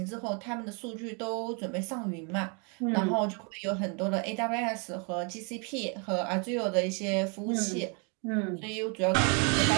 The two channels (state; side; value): quieter; left; 35.9 dB